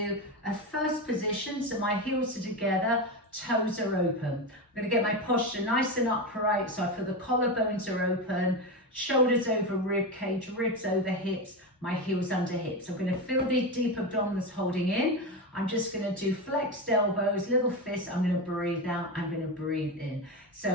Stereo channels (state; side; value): normal; both; correlation 0.17